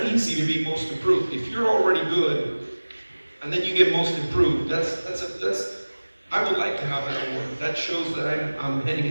easy to be most improved. If you're already good, and then you get most improved, that's I would like to have that award. That shows that I'm heading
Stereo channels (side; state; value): both; inverted; correlation -1.00